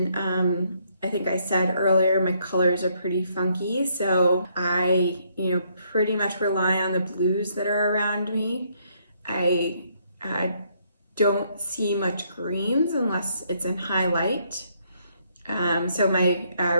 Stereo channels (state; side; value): inverted; both; correlation -0.71